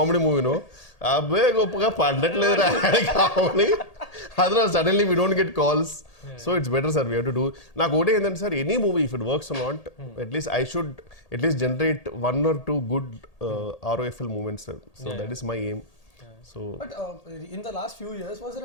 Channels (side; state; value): right; late; 1.8 ms